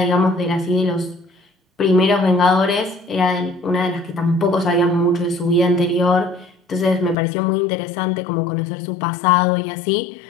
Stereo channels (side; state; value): right; drops out; at 7.2 s